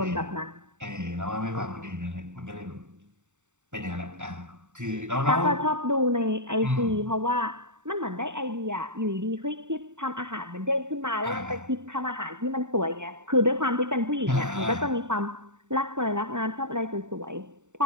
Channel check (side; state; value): left; late; 0.84 ms